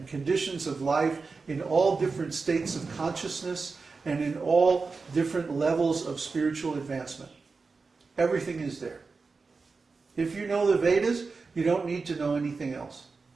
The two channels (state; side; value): quieter; left; 4.4 dB